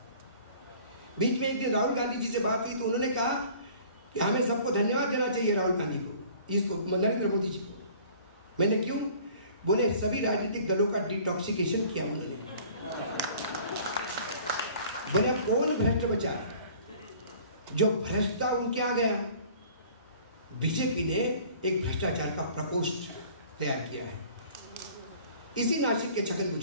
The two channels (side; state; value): both; inverted; correlation -0.50